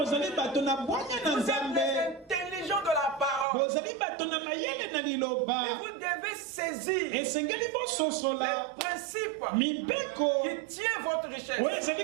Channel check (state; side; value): drops out; left; at 3.5 s